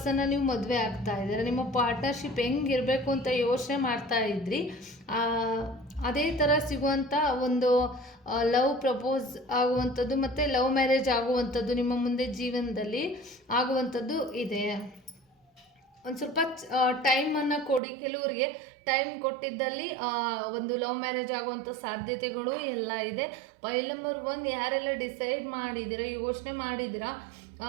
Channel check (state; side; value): drops out; left; at 17.8 s